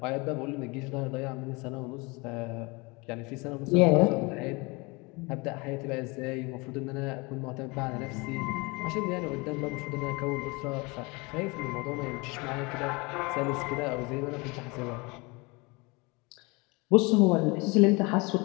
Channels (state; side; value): quieter; right; 26.8 dB